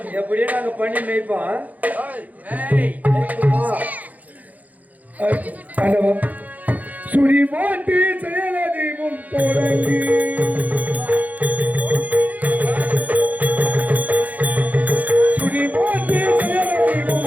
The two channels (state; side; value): late; left; 0.078 ms